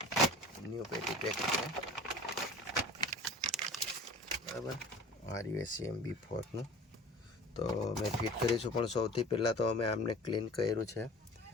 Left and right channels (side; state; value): both; normal; correlation 0.42